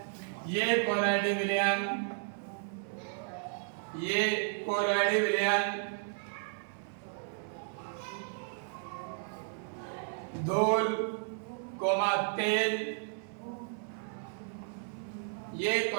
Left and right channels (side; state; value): left; silent; 55 dB below the other